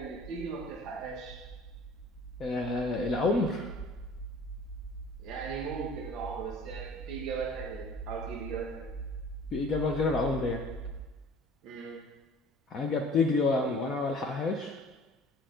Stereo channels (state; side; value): normal; both; correlation 0.48